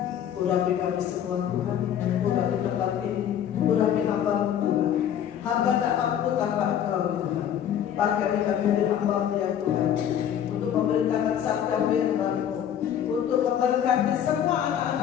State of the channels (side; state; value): right; quieter; 9.7 dB